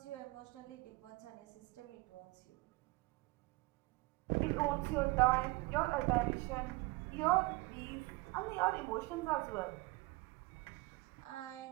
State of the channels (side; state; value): left; quieter; 23.9 dB